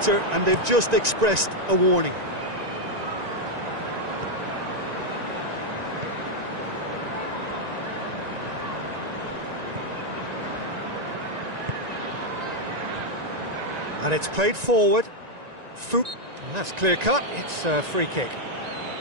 and they've just expressed a warning. And it's played forward. Foop. And that's clear cut. It's a free kick.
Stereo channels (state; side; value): late; left; 1.9 ms